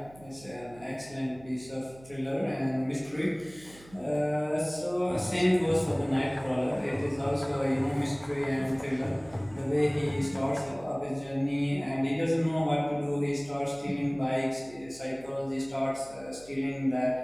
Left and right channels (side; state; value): right; noise; hum, 22 dB below the sound